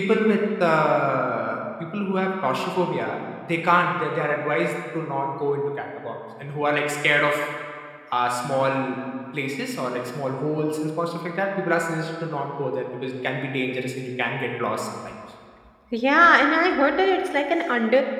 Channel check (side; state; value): both; identical; correlation 1.00